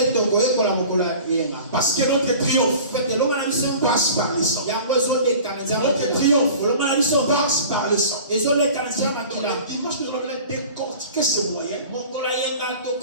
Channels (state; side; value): inverted; both; correlation -0.42